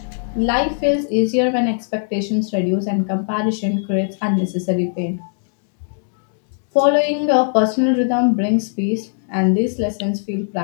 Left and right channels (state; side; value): silent; right; digital silence